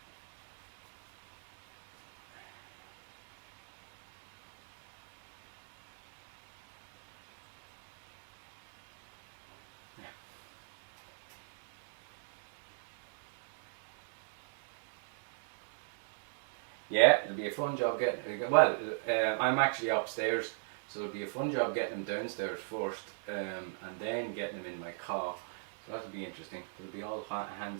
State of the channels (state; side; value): silent; left; digital silence